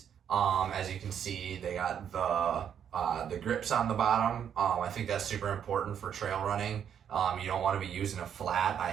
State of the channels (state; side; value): quieter; left; 8.6 dB